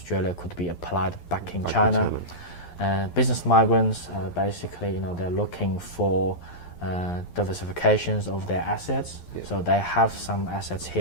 could be applied back in China. Business migrants, basically, they're looking for diversifications of their assets. So they have some assets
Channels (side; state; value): right; late; 11 ms